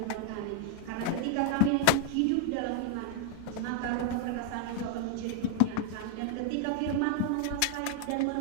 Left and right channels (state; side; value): different; both; correlation 0.00